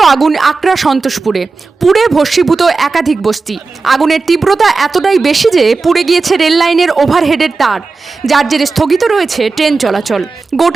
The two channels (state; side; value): quieter; left; 4.1 dB